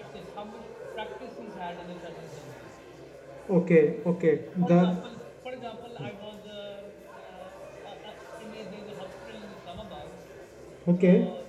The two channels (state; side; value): identical; both; correlation 1.00